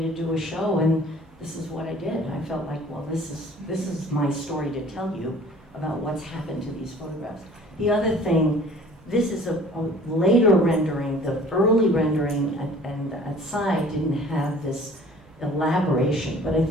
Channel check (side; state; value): both; normal; correlation 0.50